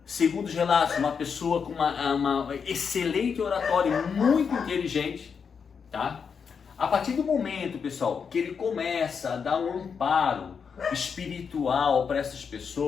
segundo os relatos, uma pessoa com uma excelente oratória, muito inteligente, tá? A partir do momento, pessoal, que ele começa a dar um amparo espiritual para essas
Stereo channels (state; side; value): quieter; right; 6.3 dB